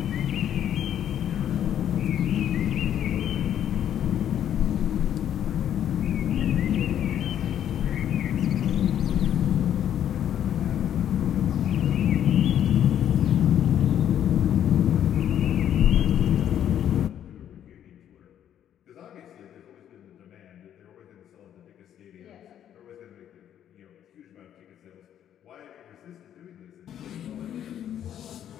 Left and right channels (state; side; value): quieter; right; 10.2 dB